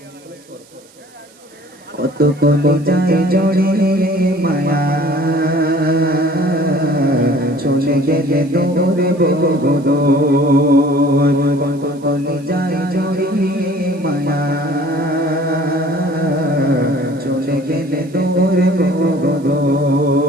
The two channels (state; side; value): noise; right; hiss, 28 dB below the sound